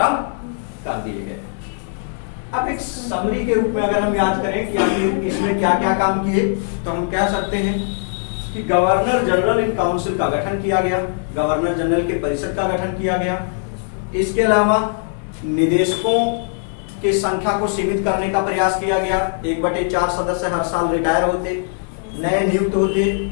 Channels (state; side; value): silent; right; 66 dB below the other